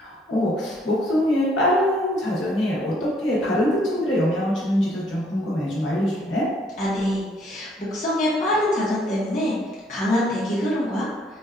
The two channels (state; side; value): normal; both; correlation 0.66